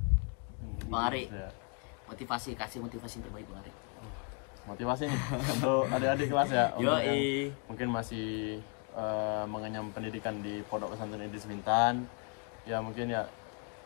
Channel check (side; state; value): right; quieter; 36.0 dB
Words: Bang Ari, kasih motivasi yang terbaik Bang Ari. Motivasi untuk adik-adik kelas Yoi. Mungkin masih mengenyam pendidikan di Pondok Pesantren Idris Bintan, ya mungkin